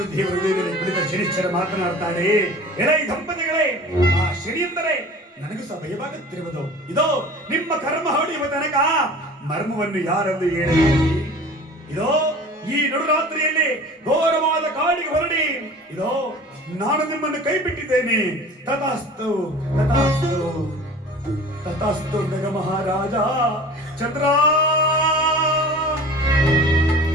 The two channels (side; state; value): both; normal; correlation 0.41